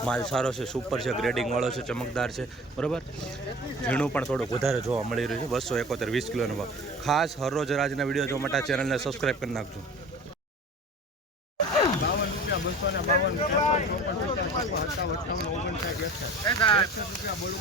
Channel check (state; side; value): normal; both; correlation 0.40